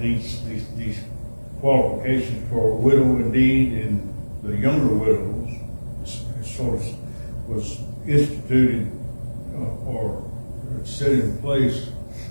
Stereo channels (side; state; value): both; inverted; correlation -1.00